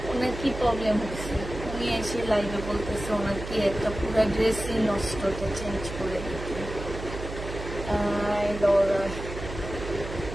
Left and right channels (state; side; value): noise; right; hum, 9 dB below the sound